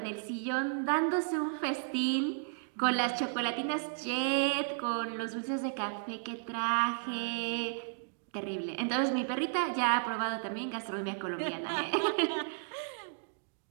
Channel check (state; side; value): silent; left; digital silence